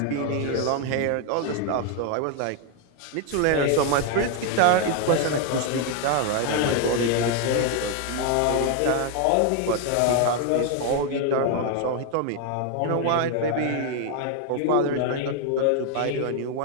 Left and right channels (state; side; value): different; both; correlation 0.01